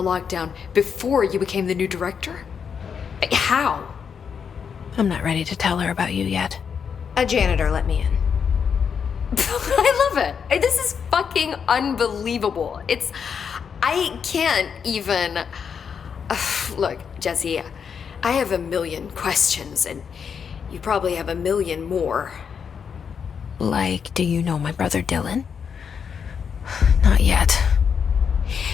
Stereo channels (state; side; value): quieter; right; 6.8 dB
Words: lockdown before you became the new director? How? I'm not ready to tell her about you yet. A janitor let me in. I love it. This is fucking unbelievable. I can't even... Look, Jesse, I have a million questions, and you probably have a million more. Like, do you know my brother Dylan? Not yet.